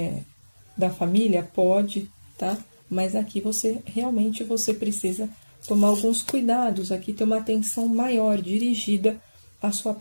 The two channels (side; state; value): both; inverted; correlation -1.00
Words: da família, pode, tá? Mas aqui você precisa tomar alguns cuidados, aqui ter uma atenção maior dirigida à sua